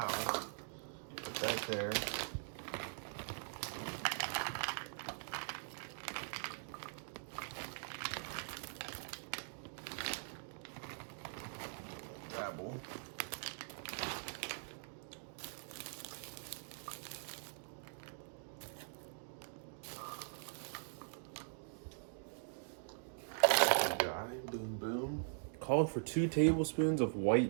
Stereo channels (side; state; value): left; silent; digital silence